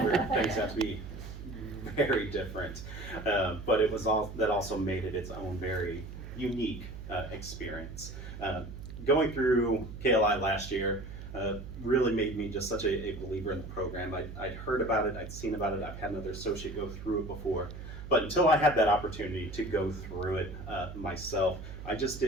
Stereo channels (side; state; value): right; noise; hum, 11 dB below the sound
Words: things have to be very different. But it was all that also made it its own very unique experience. Going through KLI last year really made me just such a believer in the program. I'd heard about it, I'd seen about it, I've had another associate go through it before, but until I had that opportunity to go through it myself, I just